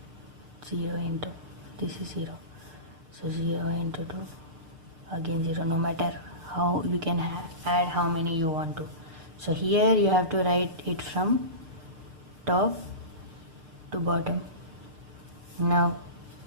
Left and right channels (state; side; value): late; left; 6.6 ms